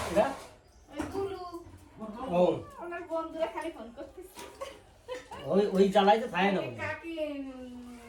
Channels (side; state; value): both; identical; correlation 1.00